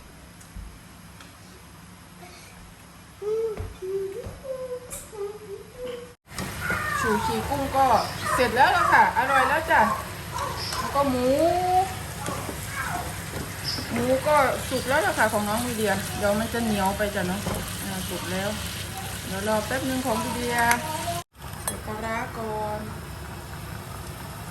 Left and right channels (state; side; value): identical; both; correlation 1.00